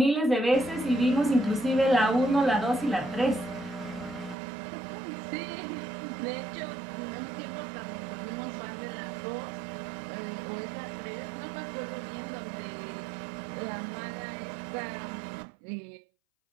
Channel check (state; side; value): drops out; left; at 4.4 s